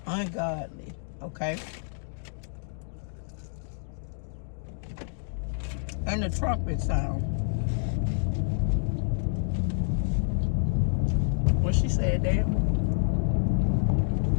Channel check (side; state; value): right; silent; digital silence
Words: ungodly, okay? And the trumpet sound. What she said there?